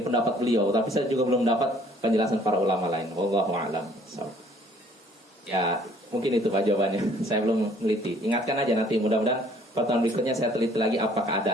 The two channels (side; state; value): both; normal; correlation 0.58